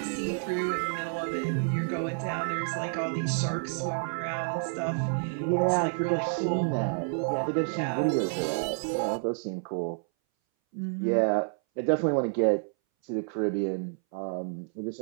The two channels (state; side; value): silent; left; 58 dB below the other